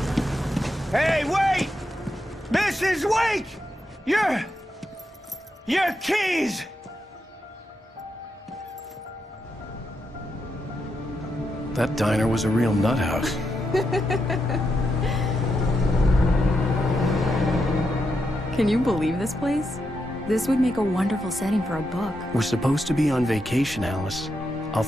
Hey, wait! Mrs. Wake! Your keys! That diner was a real nut house. Can you believe this place? This would make a wonderful setting for a book. We're supposed to be on vacation, Alice. I'll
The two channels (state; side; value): normal; both; correlation 0.84